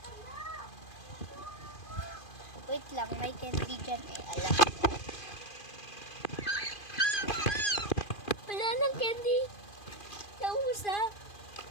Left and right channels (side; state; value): right; late; 2.4 ms